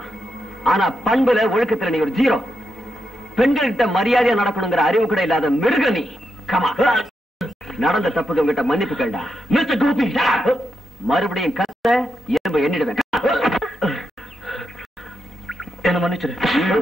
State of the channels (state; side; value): normal; both; correlation 0.85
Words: ஆனா பண்புல ஒழுக்கத்துல நீ ஒரு ஜீரோ. பெண்கள்கிட்ட மரியாதையா நடக்கணுங்கிற அறிவு கூட இல்லாத மிருக நீ. கமா, நடந்த தப்புக்கு உங்ககிட்ட மன்னிப்பு கேள்டா. மிஸ்டர் கோபி, மறுபடியும் கத்த எறும்பு எண்ணிடுவேன். என்ன மன்னிச்சிரு.